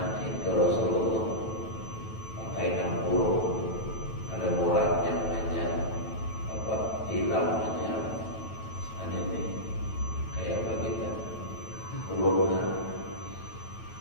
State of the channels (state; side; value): late; right; 9.1 ms